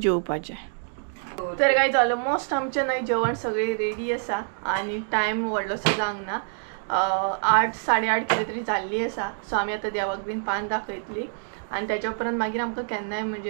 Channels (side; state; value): left; silent; digital silence